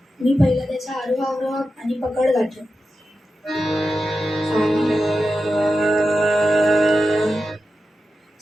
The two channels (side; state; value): both; normal; correlation 0.91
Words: मी पहिला त्याचा आरोह अवरोह आणि पकड गातो.